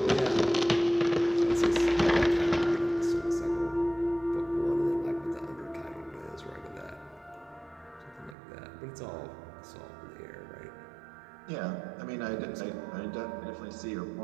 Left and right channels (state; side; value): drops out; left; at 8.3 s